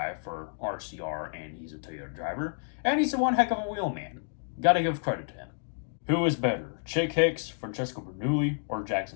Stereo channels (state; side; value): silent; right; digital silence